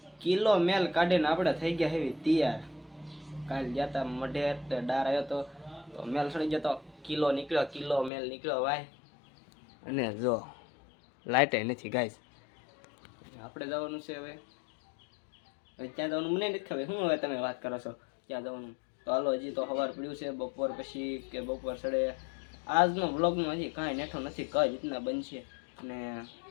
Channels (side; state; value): right; drops out; at 8.1 s